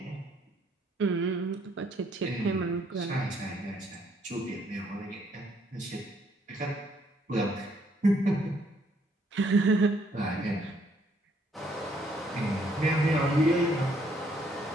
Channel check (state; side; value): normal; both; correlation 0.68